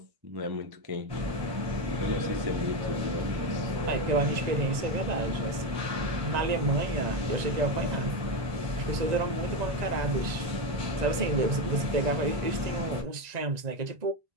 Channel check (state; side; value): late; left; 1.9 ms